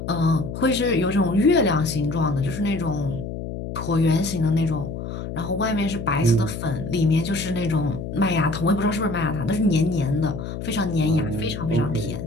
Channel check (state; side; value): noise; left; hum, 7 dB below the sound